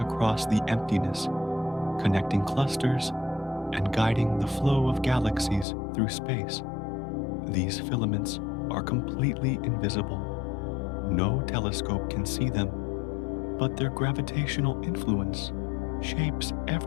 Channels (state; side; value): drops out; right; at 5.7 s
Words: across the emptiness, connecting clusters and guiding the flow of galaxies through space. These filaments are completely invisible. No telescope can see them, but their gravitational influence shapes